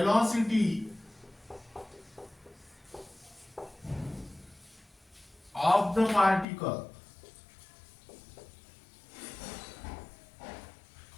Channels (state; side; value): drops out; right; at 6.5 s